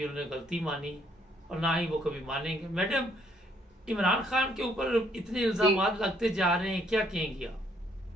उन्होंने गलती मानी और ना ही वो कभी मानेंगे। मैडम, इमरान खान के ऊपर इतने इल्जाम लगते जा रहे हैं, क्या कहेंगी आप?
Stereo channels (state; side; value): normal; both; correlation 0.68